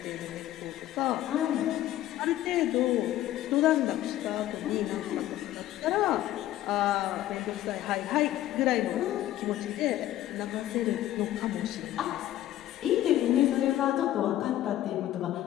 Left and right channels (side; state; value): right; quieter; 13.6 dB